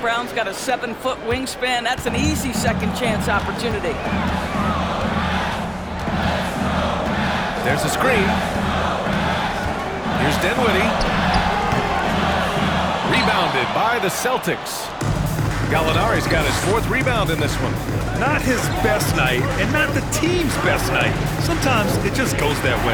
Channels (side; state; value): both; identical; correlation 1.00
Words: got a 7-foot wingspan? That's an easy second chance opportunity. There's a screen. Here's Dinwiddie. Rebounded by the Celtics. Gallinari's got his 4th rebound in this one. Not his best night, and not the team's best night. Sometimes it just goes that